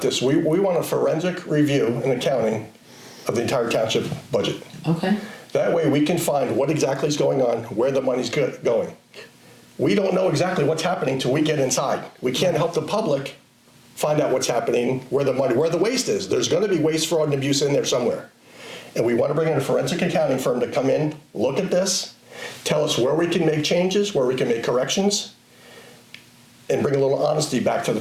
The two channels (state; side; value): identical; both; correlation 1.00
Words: this, we want a forensic review and accounting of the entire township budget. Okay. That way we can find what exactly is going on, where the money's going. We don't know exactly what's happening till we get inside. We can't help the public find out what's happening, where the waste is. There's going to be waste, fraud, and abuse in there somewhere. And we want to bring in a forensic accounting firm to come in, look at this, tell us where we can make changes, where we can make corrections, and bring a little honesty back to the